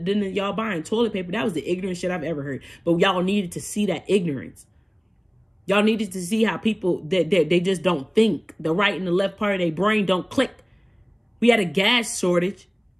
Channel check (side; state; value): both; identical; correlation 1.00